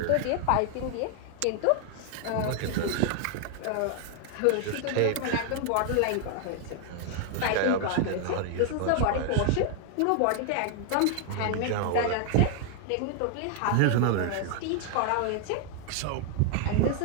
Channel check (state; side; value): different; both; correlation 0.00